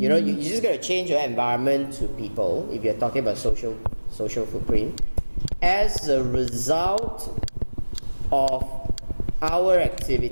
know, you're just going to change your environment to people if you're talking about social footprint as a result of our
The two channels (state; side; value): inverted; both; correlation -1.00